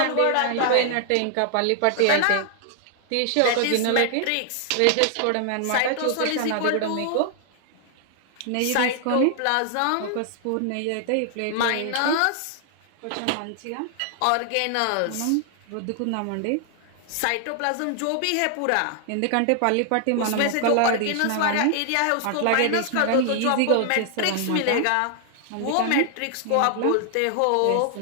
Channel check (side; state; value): both; different; correlation 0.00